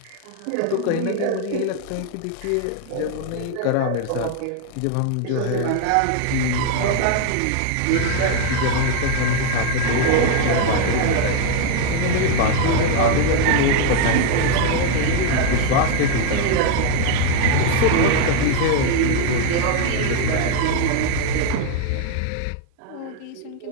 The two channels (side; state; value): both; different; correlation 0.01